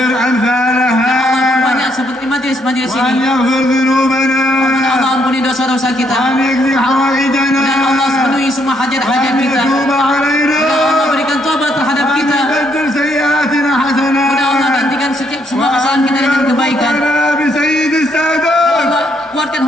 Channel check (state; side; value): normal; both; correlation 0.72